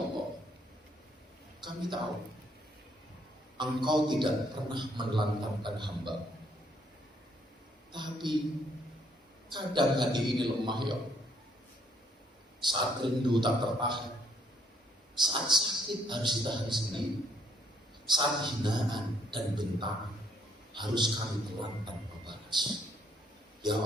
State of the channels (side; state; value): both; normal; correlation 0.68